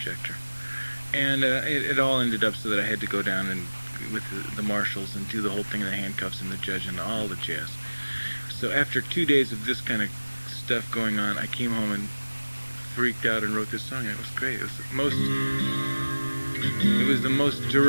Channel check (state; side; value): inverted; both; correlation -1.00